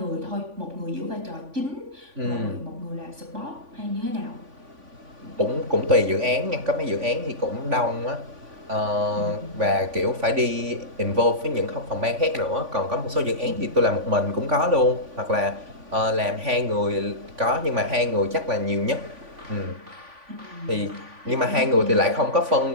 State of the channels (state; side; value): late; left; 3.5 ms